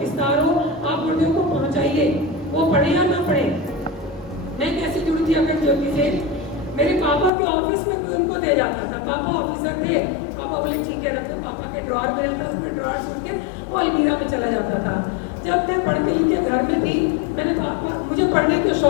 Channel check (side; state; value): right; drops out; at 7.3 s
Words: हो। आप गुरुदेव को पहुँचाइए, वो पढ़े या ना पढ़े। मैं कैसे जुड़ी थी अखंड ज्योति से, मेरे पापा के ऑफिस में कोई उनको दे जाता था, पापा ऑफिसर थे, पापा बोले ठीक है ना, तो पापा के ड्रॉर में रहता था, ड्रॉर सुन के वो अलमीरा में चला जाता था। जब मैं पढ़ते लिखे घर में थी, मुझे पढ़ने का